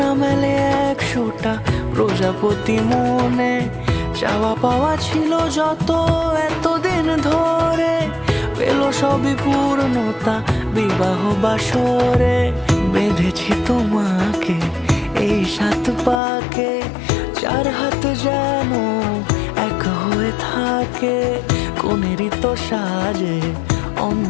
মেলে 100টা প্রজাপতি মনে, চাওয়া পাওয়া ছিল যত এতদিন ধরে, পেল সবই পূর্ণতা বিবাহ বাসরে। বেঁধেছি তোমাকে এই 7 পাকে, 4 হাত যেন এক হয়ে থাকে, কোনেরই তো সাজে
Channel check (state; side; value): drops out; right; at 16.2 s